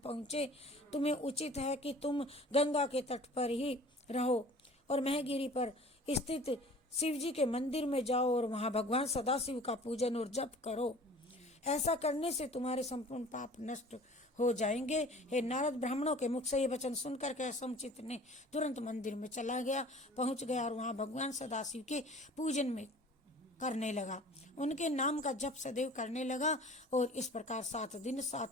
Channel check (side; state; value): both; normal; correlation 0.46